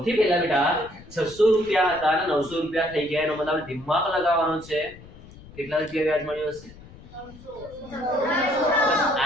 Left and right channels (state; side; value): noise; left; rumble, 20 dB below the sound